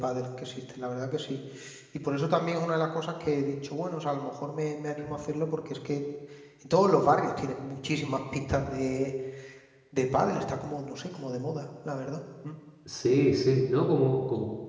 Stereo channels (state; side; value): identical; both; correlation 1.00